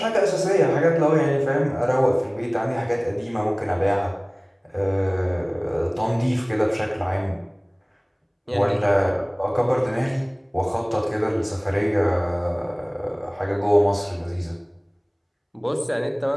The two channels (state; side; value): identical; both; correlation 1.00